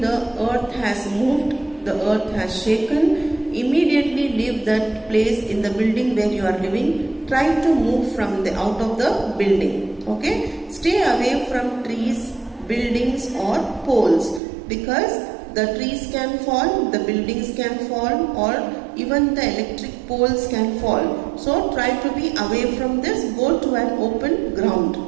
the earth has moved, the earth has shaken, immediately leave that place in the building where you are living. Try to move out of the building. Okay? Stay away from trees, buildings or poles, because the trees can fall, the buildings can fall, or even the electric poles can fall. So try to be away from this. Go to an open ground.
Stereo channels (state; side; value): drops out; left; at 14.4 s